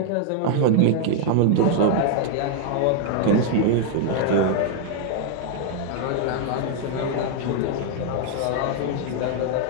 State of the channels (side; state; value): both; different; correlation 0.00